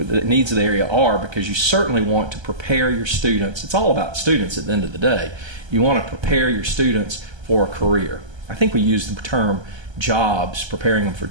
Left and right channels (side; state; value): left; late; 1.3 ms